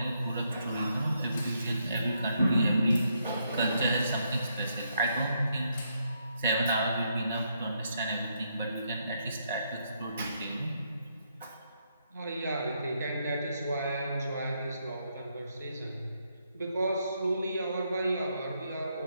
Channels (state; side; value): inverted; both; correlation -0.77